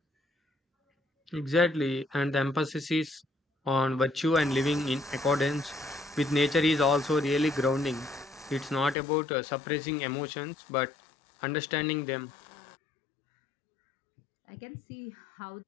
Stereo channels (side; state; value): right; drops out; at 9.0 s